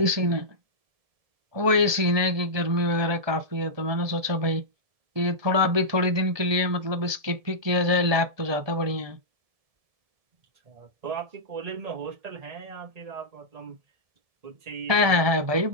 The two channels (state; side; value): late; left; 1.7 ms